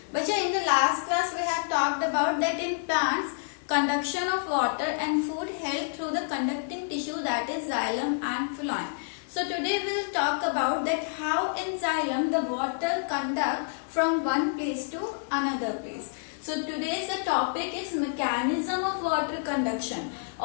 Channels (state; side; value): silent; right; digital silence